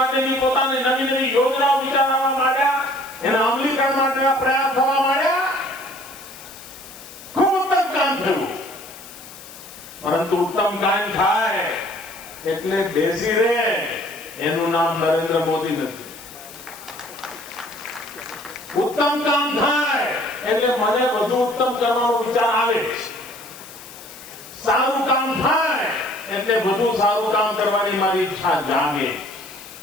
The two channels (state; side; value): noise; left; hiss, 17 dB below the sound